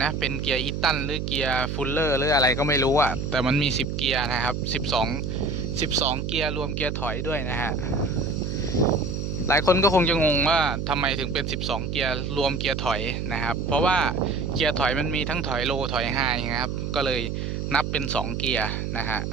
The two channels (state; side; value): noise; right; hum, 3 dB below the sound